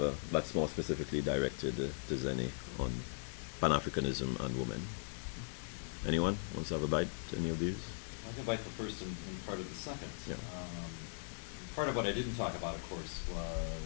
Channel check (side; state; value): right; silent; 52 dB below the other